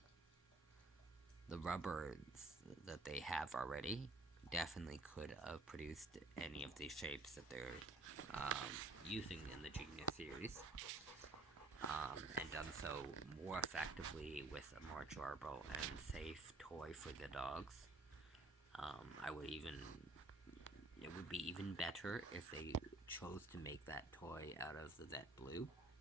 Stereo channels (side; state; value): left; quieter; 3.1 dB